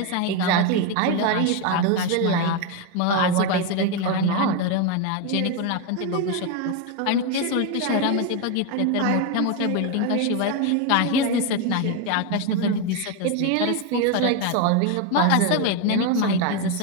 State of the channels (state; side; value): different; both; correlation 0.02